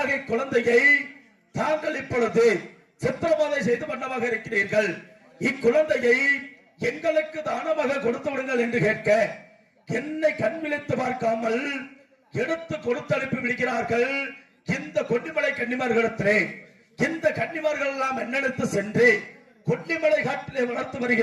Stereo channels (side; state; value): both; identical; correlation 1.00